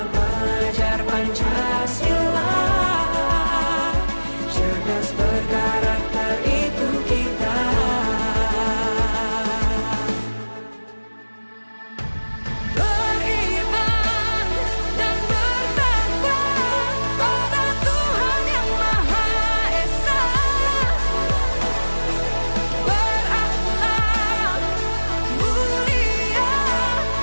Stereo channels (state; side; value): inverted; both; correlation -1.00